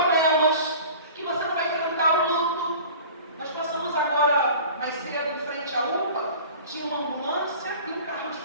que você não vai enfrentar o luto. Nós passamos agora, mais cedo, em frente à UPA, tinha uma ambulância e um carro de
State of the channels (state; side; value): inverted; both; correlation -0.42